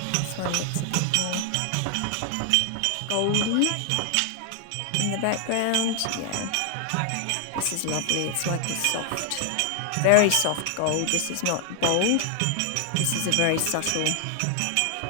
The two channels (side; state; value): both; different; correlation 0.00